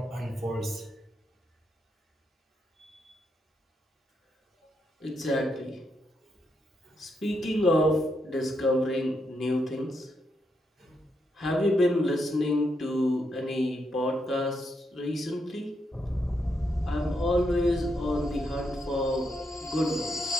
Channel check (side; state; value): both; normal; correlation 0.81